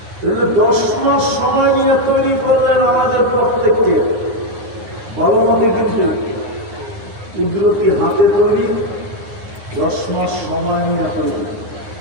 10 মাস সময় নিয়ে তৈরি করলেন আমাদের প্রত্যেককে। ভালো মতে কিন্তু কুদরতি হাতে তৈরি, 10 মাস সময় নিয়ে তৈরি।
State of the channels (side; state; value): left; late; 9.6 ms